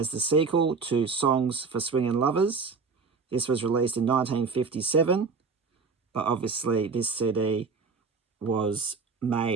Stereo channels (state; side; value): quieter; left; 4.8 dB